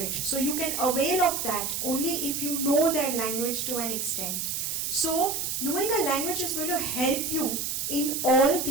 So you can avail of that only if you know their language to an extent. So knowing a language is going to help you in all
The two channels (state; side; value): noise; right; hiss, 2 dB below the sound